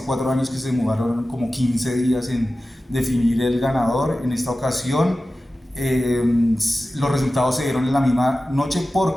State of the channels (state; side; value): normal; both; correlation 0.95